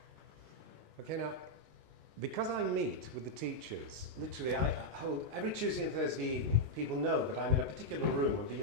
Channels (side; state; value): left; late; 19 ms